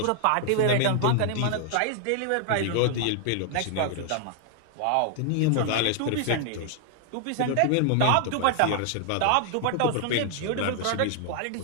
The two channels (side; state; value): both; different; correlation 0.00